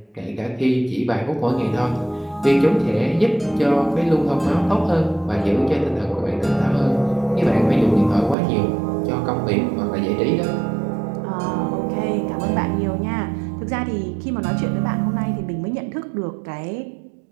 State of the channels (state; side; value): drops out; left; at 8.3 s